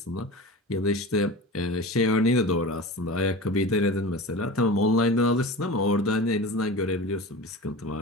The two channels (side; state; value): both; normal; correlation 0.32